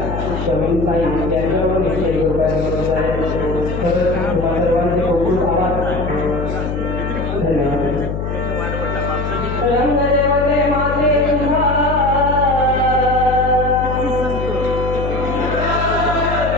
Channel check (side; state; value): left; noise; hum, 4 dB below the sound